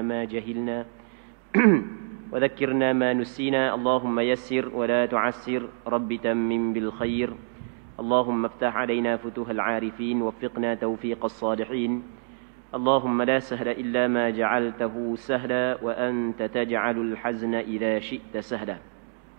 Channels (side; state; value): left; silent; digital silence